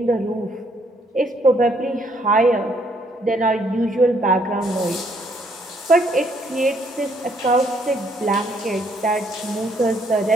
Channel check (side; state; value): both; normal; correlation 0.68